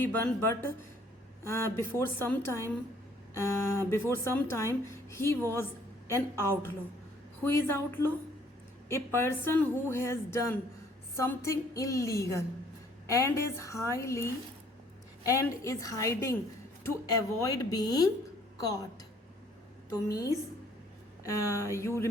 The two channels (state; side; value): normal; both; correlation 0.61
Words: but before some time he was an outlaw. Who is outlaw? A person who has done something illegal and is hiding to avoid being caught. So means you